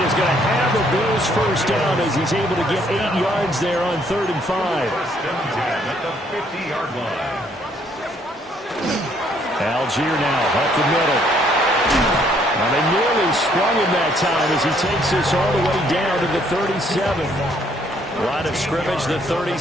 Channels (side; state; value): both; normal; correlation 0.66